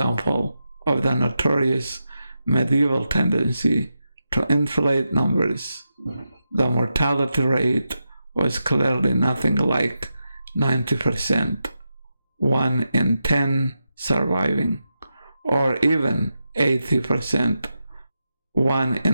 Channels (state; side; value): inverted; both; correlation -0.88